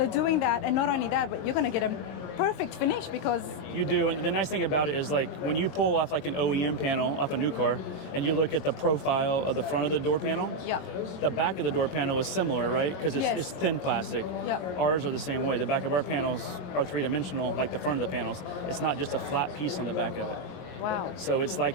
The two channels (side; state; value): right; late; 22 ms